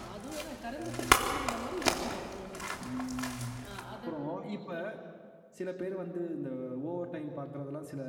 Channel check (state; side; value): identical; both; correlation 1.00